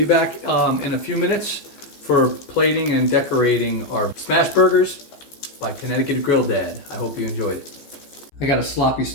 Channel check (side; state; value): right; late; 14 ms